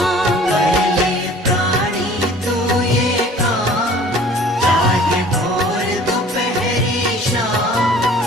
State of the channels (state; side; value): normal; both; correlation 0.49